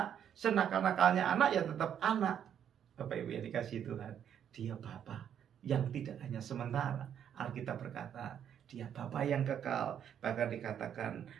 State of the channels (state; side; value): quieter; left; 9.1 dB